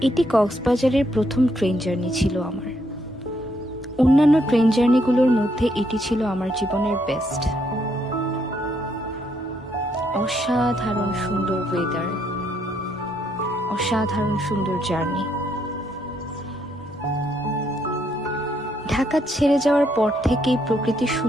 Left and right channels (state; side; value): normal; both; correlation 0.74